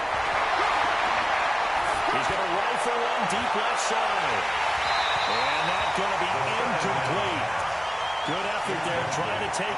He's going to rifle one deep left side. And that's going to be incomplete. Good effort there, trying to take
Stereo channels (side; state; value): both; identical; correlation 1.00